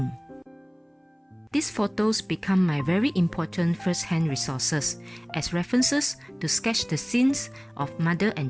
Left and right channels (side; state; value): both; identical; correlation 1.00